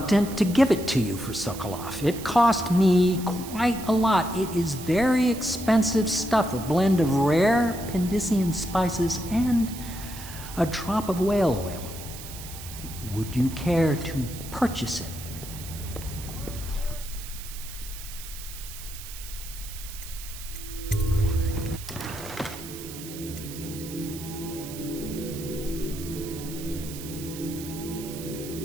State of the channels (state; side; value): noise; right; hiss, 12 dB below the sound